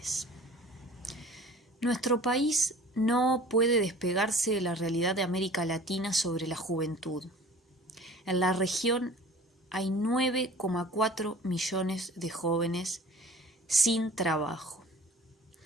Nuestro país no puede despegarse de la realidad de América Latina sobre la juventud. En la región hay 9,4 millones de jóvenes sin trabajo,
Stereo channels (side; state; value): both; normal; correlation 0.45